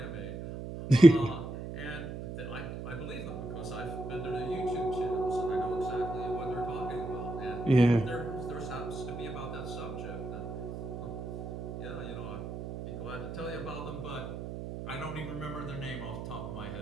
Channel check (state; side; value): noise; right; hum, 7 dB below the sound